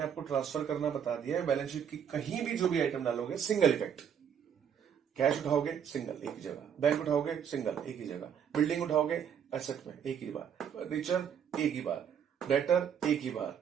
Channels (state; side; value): quieter; left; 8.2 dB